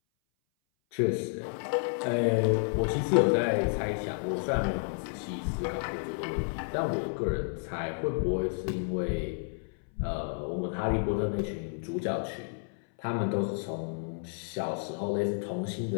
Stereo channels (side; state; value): right; silent; 57 dB below the other